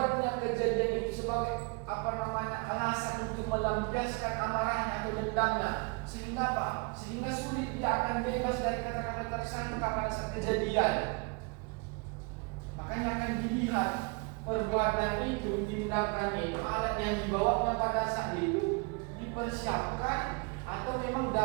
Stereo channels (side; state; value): left; quieter; 30.9 dB